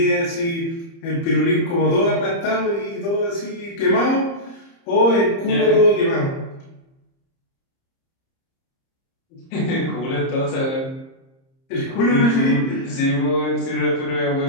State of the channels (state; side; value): late; right; 30 ms